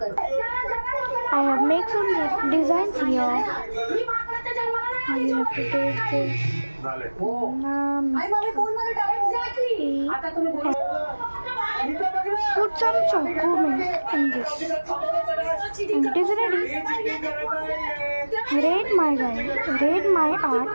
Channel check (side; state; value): both; inverted; correlation -1.00